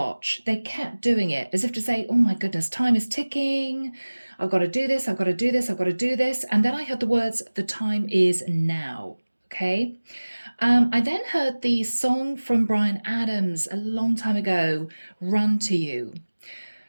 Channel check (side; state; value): both; inverted; correlation -1.00